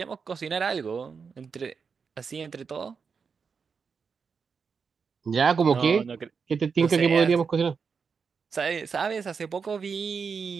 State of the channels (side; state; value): left; quieter; 5.7 dB